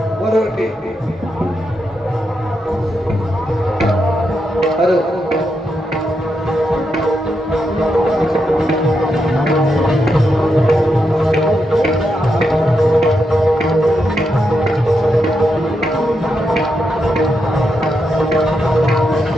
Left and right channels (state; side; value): normal; both; correlation 0.84